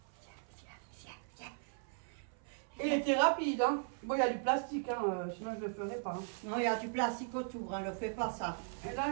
Et il était rapide, hein. Bon, il y a du plastique, hein, sinon je ne le ferais pas. Hein. Non, il y a du plastique autour, hein, ne fais pas ça. Et là,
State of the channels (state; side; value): silent; left; 52 dB below the other